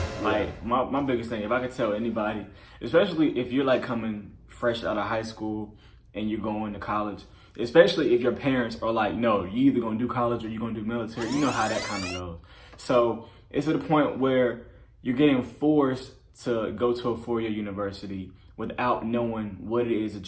Like, my biggest thing, if I could tell anybody, especially if you're like coming fresh out of high school and you're going to college, especially if your parents are like, no, you either gonna do college or you're gonna do military, you know how that kind of goes. So it's to the point where you're getting forced to go to a 4-year university without knowing what it is that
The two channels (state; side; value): identical; both; correlation 1.00